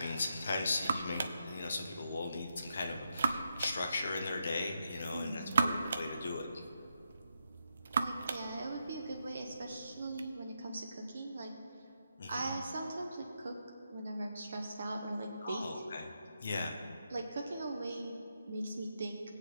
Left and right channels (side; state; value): both; inverted; correlation -0.83